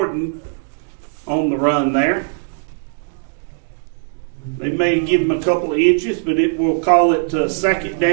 on the run there. They may give him a couple of inches, but we'll call it second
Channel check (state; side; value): silent; left; digital silence